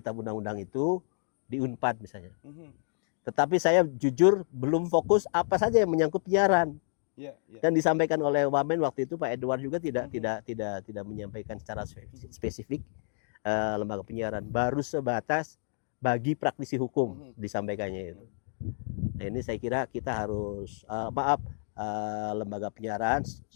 Undang-Undang itu di Unpad misalnya. Tetapi saya jujur belum fokus apa saja yang menyangkut penyiaran. Dan disampaikan oleh Wamen waktu itu Pak Edward juga tidak menyampaikan secara spesifik lembaga penyiaran, baru sebatas bagi praktisi hukum disampaikannya itu. Nah, ini saya kira kita harus lembaga penyiaran,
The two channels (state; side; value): silent; right; digital silence